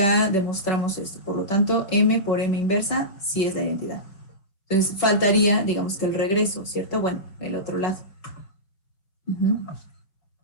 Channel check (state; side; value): late; right; 5.3 ms